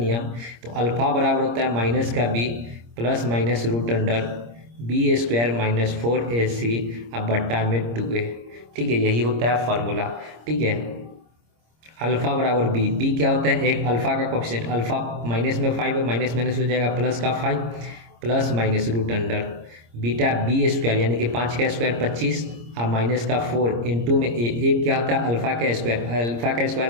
तो अल्फ़ा बराबर होता है माइनस का b plus minus root under b square minus 4ac अब बट्टा में 2a, ठीक है। यही होता है फॉर्मूला, ठीक है। अल्फ़ा बराबर बी, बी क्या होता है, एक अल्फ़ा का कोफिशिएंट, अल्फ़ा माइनस में 5 है, माइनस माइनस हो जाएगा प्लस का 5 plus minus root under beta b square यानी कि 5 का स्क्वायर 25 अब माइनस का 4 इंटू में एक क्या होता है अल्फ़ा का स्क्वायर, अल्फ़ा का स्क्वायर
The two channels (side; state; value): left; late; 26 ms